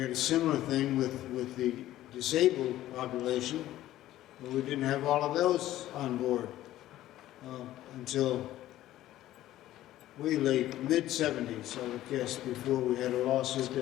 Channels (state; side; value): quieter; right; 14.3 dB